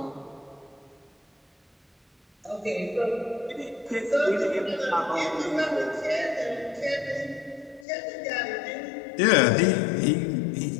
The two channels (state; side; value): drops out; right; at 7.9 s